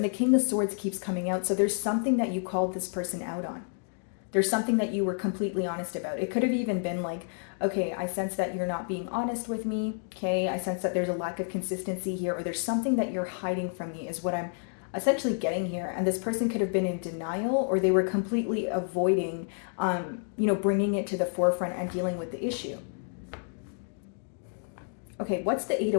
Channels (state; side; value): silent; right; 58 dB below the other